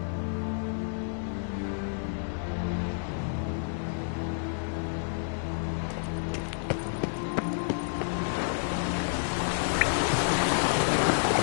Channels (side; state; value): right; silent; digital silence